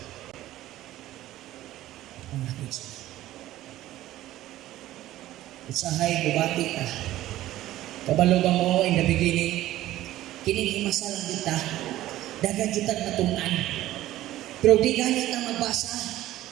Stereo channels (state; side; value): quieter; left; 14.7 dB